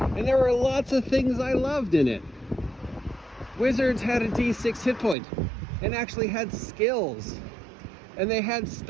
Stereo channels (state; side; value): drops out; left; at 5.2 s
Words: and there were lots of things I loved in it. Wizards had a D6 hit point and actually had skills, and they had